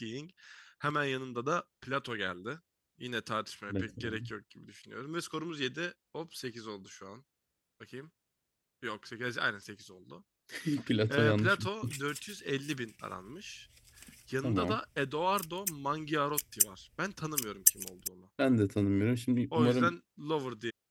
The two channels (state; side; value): identical; both; correlation 1.00